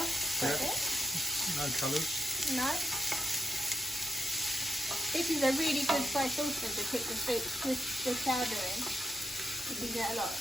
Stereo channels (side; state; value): both; normal; correlation 0.82